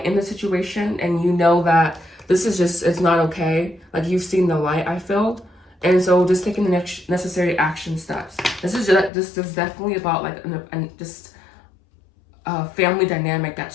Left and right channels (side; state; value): right; drops out; at 9.1 s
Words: in the situation, and you know that this is just, it's not okay. Like, you've seen the light, I feel. And so just taking the necessary action steps. This is definitely about like just a family dynamic